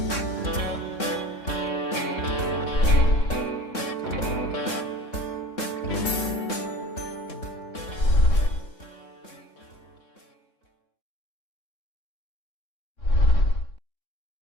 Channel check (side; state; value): right; late; 3.6 ms